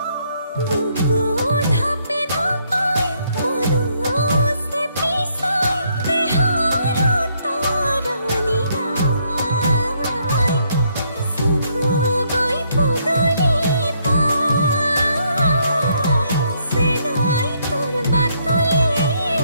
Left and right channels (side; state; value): both; inverted; correlation -0.71